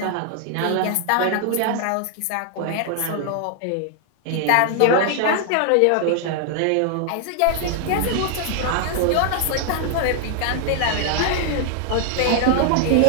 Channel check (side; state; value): both; different; correlation 0.00